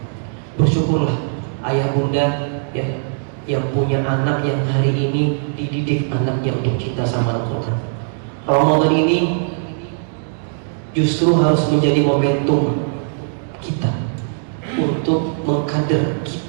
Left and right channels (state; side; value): silent; left; digital silence